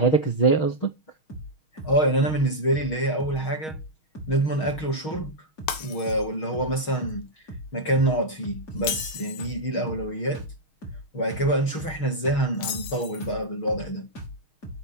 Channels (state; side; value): late; right; 6.4 ms